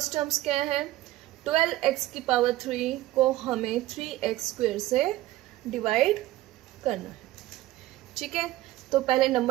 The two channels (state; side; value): quieter; left; 16.2 dB